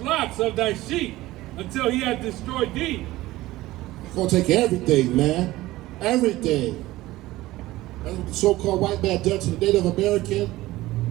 of thy sheep, until he hath destroyed thee. He's gonna take everything, man. Everything. That's what the so-called white man done to the Native American.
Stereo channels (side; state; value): left; quieter; 17.5 dB